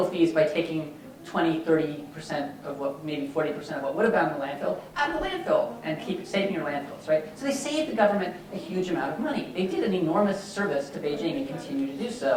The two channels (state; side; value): identical; both; correlation 1.00